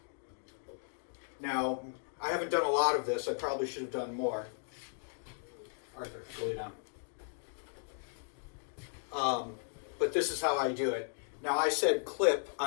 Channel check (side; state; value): right; silent; digital silence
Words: I haven't done a lot of this. I probably should have done more. Arthur, go lay down. But this is how I do it. Now, I said clip.